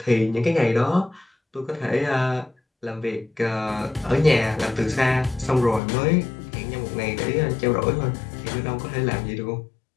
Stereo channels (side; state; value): right; drops out; at 5.8 s